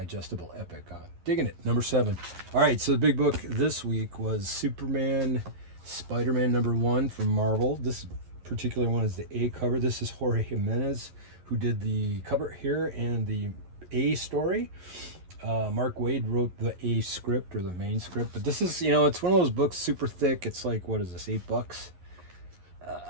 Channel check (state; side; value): late; left; 11 ms